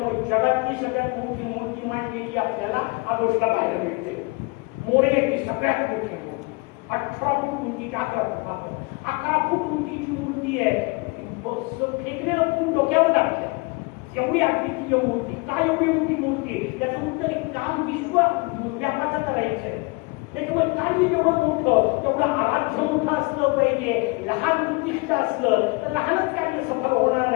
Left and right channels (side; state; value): right; quieter; 28.0 dB